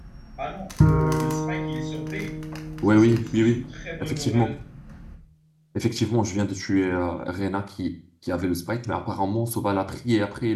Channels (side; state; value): both; identical; correlation 1.00